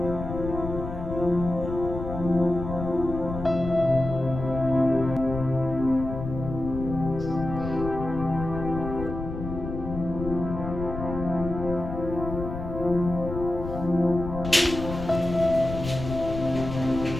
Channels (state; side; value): noise; left; rumble, 7 dB below the sound